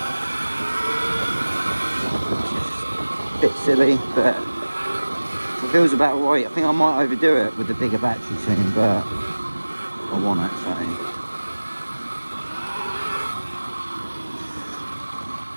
It's just a bit silly, but it feels about right. I think I might overdo it with the bigger battery soon, but I want it, so.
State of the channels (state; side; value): inverted; both; correlation -1.00